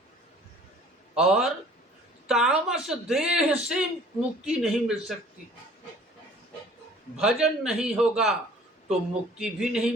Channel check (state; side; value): normal; both; correlation 0.51